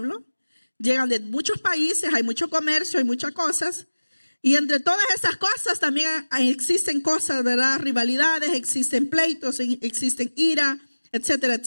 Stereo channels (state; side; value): inverted; both; correlation -1.00